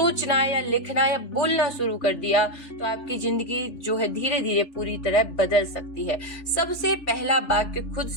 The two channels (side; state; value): right; late; 3.5 ms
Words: या लिखना या बोलना शुरू कर दिया तो आपकी जिंदगी जो है धीरे धीरे पूरी तरह बदल सकती है। सबसे पहला वाक्य खुद